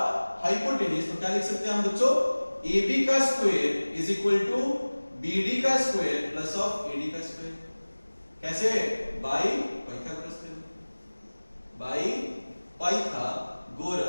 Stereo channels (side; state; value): both; inverted; correlation -1.00